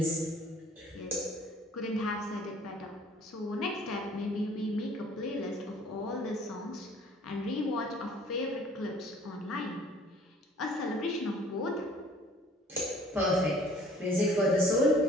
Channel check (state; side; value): normal; both; correlation 0.54